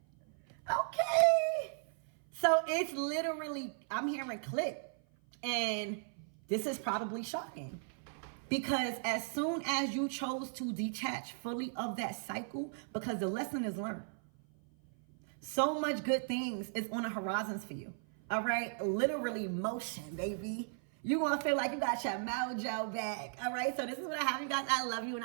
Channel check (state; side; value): silent; left; 54 dB below the other